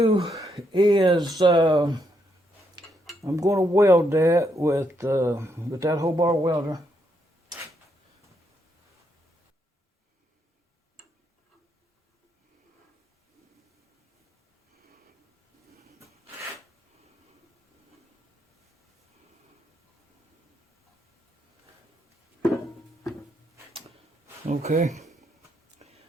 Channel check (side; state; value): both; normal; correlation 0.77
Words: is I'm going to weld that with that whole bar welder. Okay.